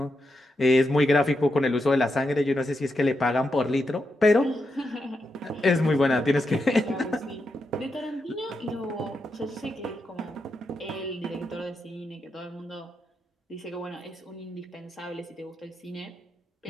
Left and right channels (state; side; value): normal; both; correlation 0.85